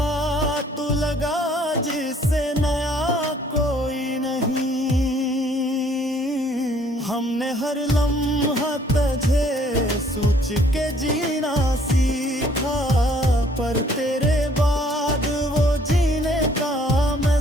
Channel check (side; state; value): both; normal; correlation 0.61